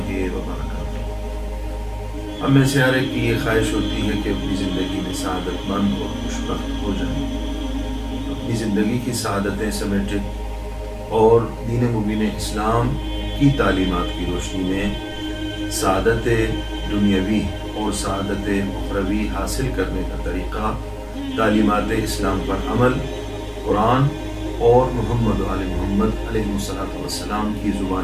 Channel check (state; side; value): identical; both; correlation 1.00